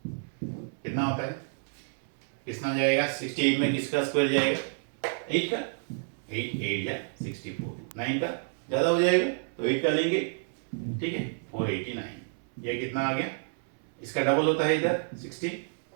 कितना होता है, कितना जाएगा, 68 में किसका स्क्वायर जाएगा, 8 का, 8 8 या 64, 9 का ज़्यादा हो जाएगा तो 8 का लेंगे। ठीक है, 489, ये कितना आ गया, इसका डबल होता है इधर 16,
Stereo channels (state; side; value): silent; left; 58 dB below the other